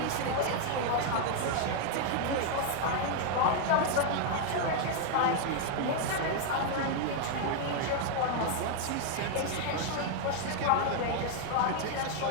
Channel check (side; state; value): both; different; correlation 0.00